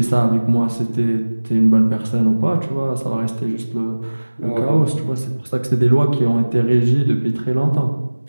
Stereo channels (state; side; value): inverted; both; correlation -1.00